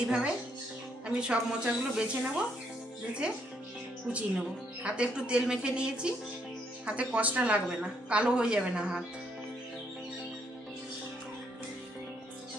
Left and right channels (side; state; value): both; normal; correlation 0.72